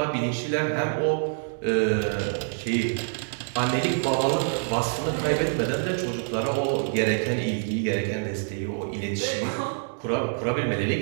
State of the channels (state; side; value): silent; left; digital silence